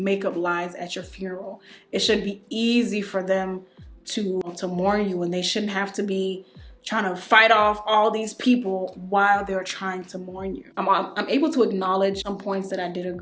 up lies at your funeral. It should be easy for them to mourn you, and they shouldn't have to be trying to fight off all these people while they're trying to mourn you. I'm able to acknowledge some points that I did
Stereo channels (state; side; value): identical; both; correlation 1.00